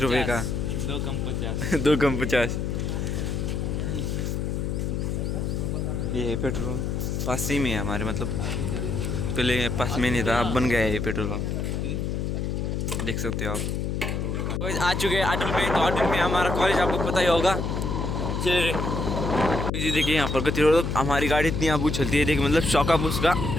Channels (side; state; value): left; noise; hum, 1 dB below the sound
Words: रुपये का, 2 कम 50। 2 कम 50। ये है पेट्रोल, पास ही में है हमारे, मतलब पहले पास में नहीं था, अब बन गया है ये पेट्रोल पंप, देख सकते हो आप। तो आ चुके हैं अटल में, तो अटल में हमारा कॉलेज आपको पता ही होगा। चलिए देखिए यहाँ पर गति रोड, हमारी गाड़ी इतनी आबू चलती है, देखिए मतलब शौकअप